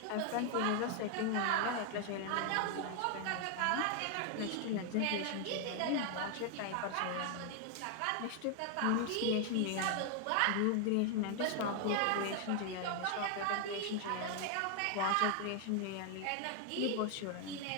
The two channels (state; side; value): different; both; correlation 0.00